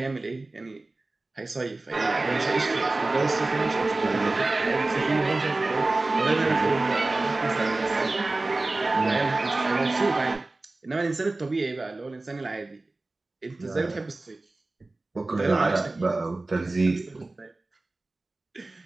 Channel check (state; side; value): quieter; left; 3.1 dB